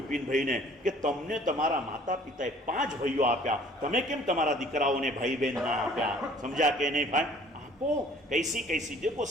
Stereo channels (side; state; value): both; normal; correlation 0.53